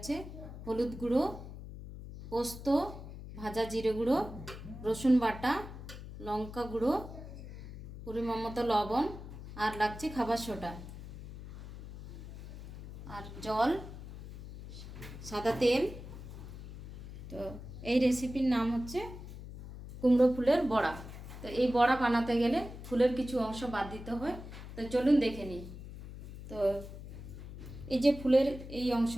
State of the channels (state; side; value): noise; left; hum, 12 dB below the sound